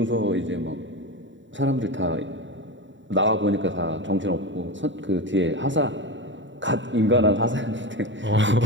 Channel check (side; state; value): left; late; 0.54 ms